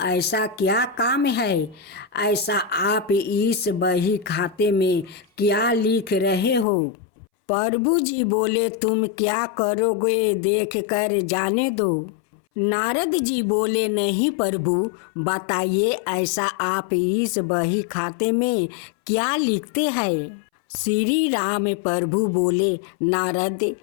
ऐसा क्या काम है। ऐसा आप इस बही खाते में क्या लिख रहे हो। प्रभु जी बोले, तुम क्या करोगे देख कर जाने दो। नारद जी बोले, नहीं प्रभु बताइए, ऐसा आप इस बही खाते में क्या लिखते हैं। श्री राम प्रभु बोले, नारद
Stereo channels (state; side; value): drops out; right; at 6.7 s